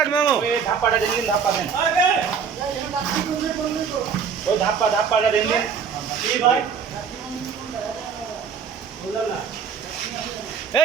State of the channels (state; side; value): quieter; left; 6.6 dB